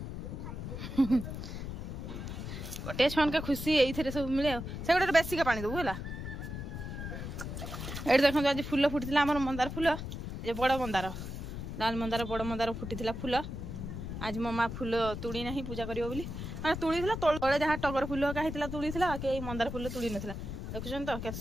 गोटे छुआ के खुशी ये सब मिले से गोटे बेसी का पानी देबू है ये देखो आज फूल फुटी आम मंदार फूल ये बड़ मंदार लाल मंदार बड़ मंदार फुटी फूल आज मो माँ फूल तुड़ी ना पूजा कर तुड़ी तले जहाँ टगर फूल होता तुड़ी के मंदार फूल तुड़ी ना देखुन तो क्या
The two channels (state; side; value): noise; left; rumble, 7 dB below the sound